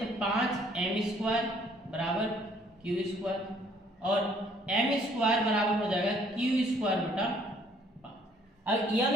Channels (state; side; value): normal; both; correlation 0.62